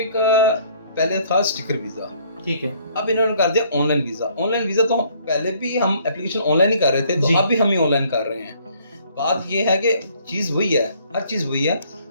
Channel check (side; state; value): both; inverted; correlation -0.61